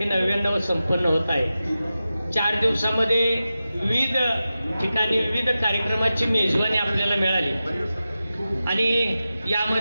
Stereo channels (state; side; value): inverted; both; correlation -0.93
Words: 99 संपन्न होत आहे. 4 दिवसामध्ये विविध ठिकाणी विविध कार्यक्रमाची मेजवानी आपल्याला मिळाली. आणि